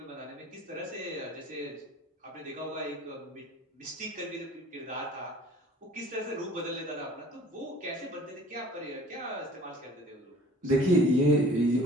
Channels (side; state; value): both; normal; correlation 0.50